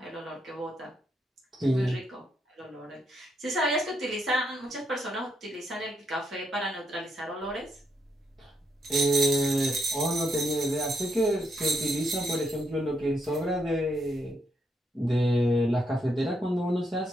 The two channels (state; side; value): normal; both; correlation 0.78